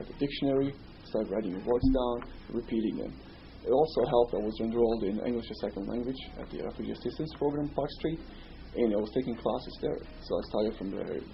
the dictionary, start writing the words down, repeating them. It also helped. I was enrolled in English as second language at the Refugee Assistance Program, Park Street, and I was taking classes there. So I started from the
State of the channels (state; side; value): identical; both; correlation 1.00